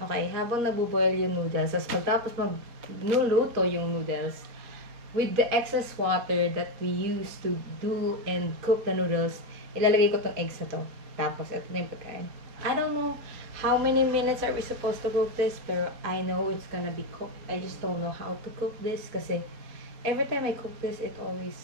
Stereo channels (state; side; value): late; left; 4.2 ms